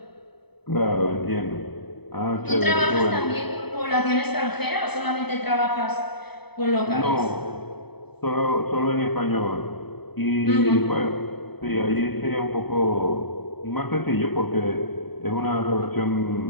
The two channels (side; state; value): right; late; 0.98 ms